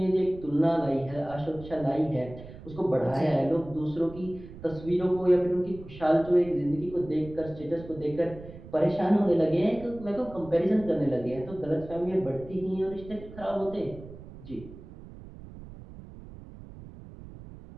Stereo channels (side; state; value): right; noise; rumble, 16 dB below the sound